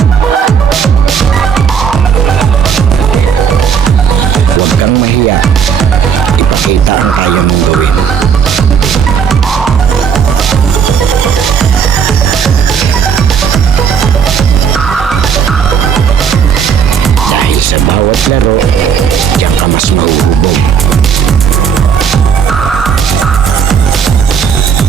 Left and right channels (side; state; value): left; quieter; 7.1 dB